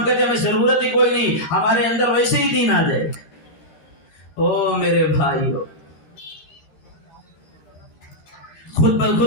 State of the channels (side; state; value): right; late; 13 ms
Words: کہتے ہیں ہمیں ضرورت ہی کوئی نہیں، ہمارے اندر ویسے ہی دین آ جائے. او میرے بھائیو، خود